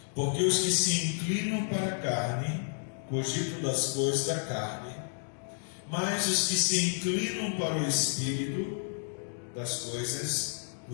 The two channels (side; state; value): right; silent; digital silence